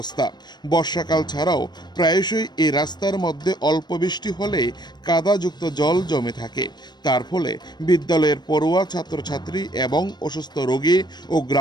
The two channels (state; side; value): late; right; 0.21 ms